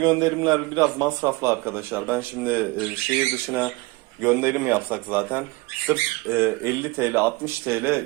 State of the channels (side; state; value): left; quieter; 22.9 dB